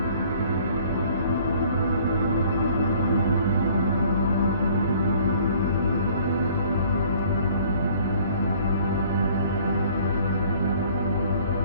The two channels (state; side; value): inverted; both; correlation -0.55